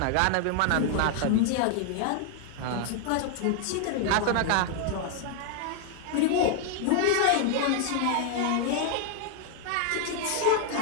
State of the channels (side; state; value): both; different; correlation 0.00